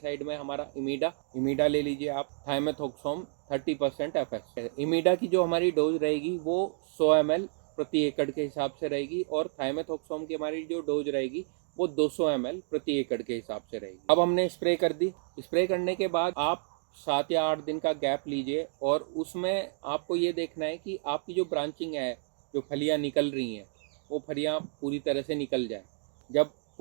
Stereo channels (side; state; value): left; silent; digital silence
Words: में हमारा इमीडा ले लीजिए आप, थाइमेथॉक्सोम 30% FS। इमीडा की जो हमारी डोज रहेगी वो 100 ml प्रति एकड़ के हिसाब से रहेगी, और थाइमेथॉक्सोम की हमारी जो डोज रहेगी वो 200 ml प्रति एकड़ के हिसाब से रहेगी। अब हमने स्प्रे कर दी। स्प्रे करने के बाद आप 7 या 8 दिन का गैप लीजिए, और उसमें आपको ये देखना है कि आपकी जो ब्रांचिंग है, जो फलियां निकल रही हैं, वो फलियां पूरी तरह से निकल जाए। जब